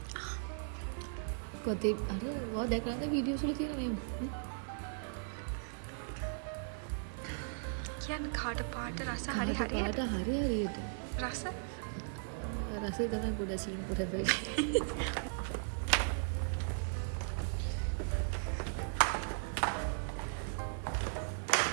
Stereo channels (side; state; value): left; silent; 53 dB below the other